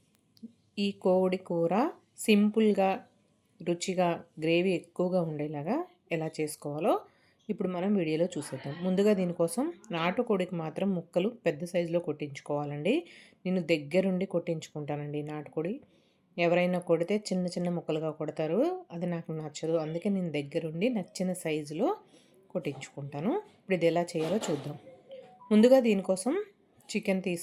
ఈ కోడి కూర సింపుల్గా, రుచిగా, గ్రేవీ ఎక్కువగా ఉండేలాగా ఎలా చేసుకోవాలో ఇప్పుడు మనం వీడియోలో చూసేద్దాం. ముందుగా దీనికోసం నాటుకోడికి మాత్రం ముక్కలు పెద్ద సైజులో కొట్టించుకోవాలండి. నేను దగ్గరుండి కొట్టించుకుంటానండి నాటుకోడి. ఎవరైనా కొడితే చిన్న చిన్న ముక్కలుగా కొడతారు, అది నాకు నచ్చదు. అందుకే నేను దగ్గరుండి నచ్చిన సైజులో కొట్టించుకుంటాను. ఇప్పుడు ఇది ఎలా చేయాలో చూద్దాం. ముందుగా దీనికోసం చికెన్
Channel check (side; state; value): both; identical; correlation 1.00